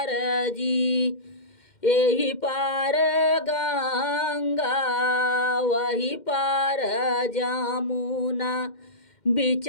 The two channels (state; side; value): late; right; 2.1 ms